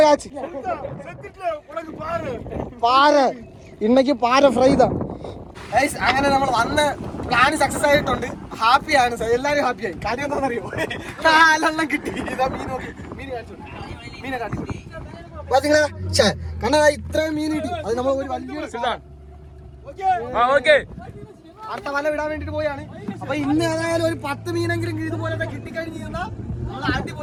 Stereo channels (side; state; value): both; identical; correlation 1.00